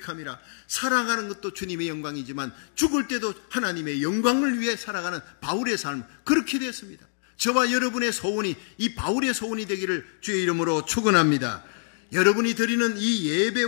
살아가는 것도 주님의 영광이지만 죽을 때도 하나님의 영광을 위해 살아가는 바울의 삶, 그렇게 되었습니다. 저와 여러분의 소원이 이 바울의 소원이 되기를 주의 이름으로 축원합니다. 여러분이 드리는 이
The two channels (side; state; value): right; silent; digital silence